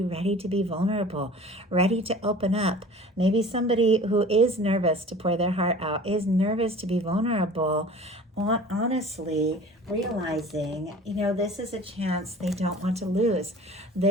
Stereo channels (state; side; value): normal; both; correlation 0.43